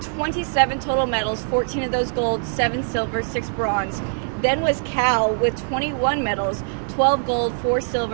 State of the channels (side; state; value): left; silent; 55 dB below the other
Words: total medals, 14 of those gold, 7 silver, 6 bronze. Then was Cal with 21 medals, 12 gold, 4